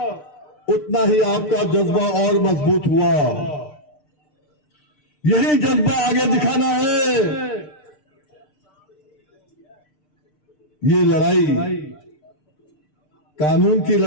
उतना ही आपका जज्बा और मजबूत हुआ। यही जज्बा आगे दिखाना है। ये लड़ाई कानून की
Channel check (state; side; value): late; right; 6.6 ms